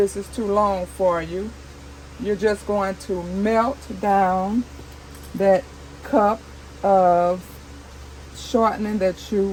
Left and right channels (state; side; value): identical; both; correlation 1.00